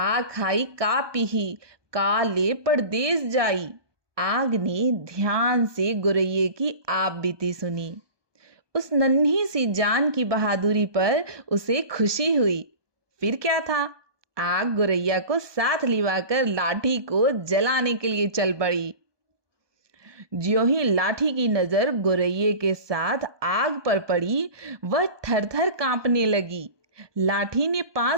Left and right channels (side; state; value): left; late; 1.2 ms